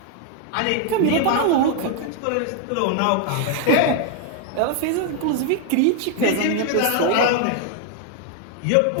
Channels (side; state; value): both; different; correlation 0.00